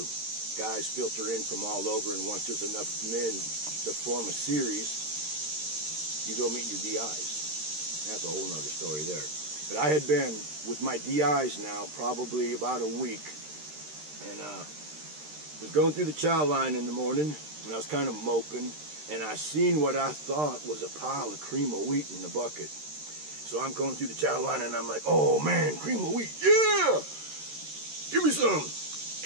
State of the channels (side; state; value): left; late; 13 ms